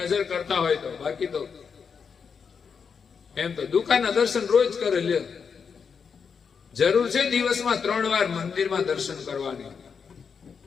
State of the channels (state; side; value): quieter; right; 6.1 dB